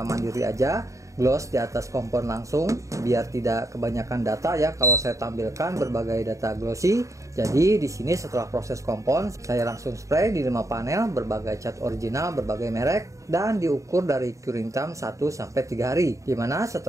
mandiri aja. Gloss di atas kompon langsung biar tidak kebanyakan data ya kalau saya tampilkan berbagai data glossy. Jadi di sini setelah proses kompon saya langsung spray di 5 panel berbagai cat original berbagai merek dan diukur dari curing time 1-3 hari. Dimana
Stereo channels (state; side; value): late; left; 0.15 ms